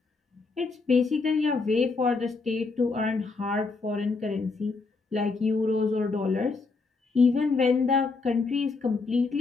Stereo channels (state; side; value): quieter; right; 4.1 dB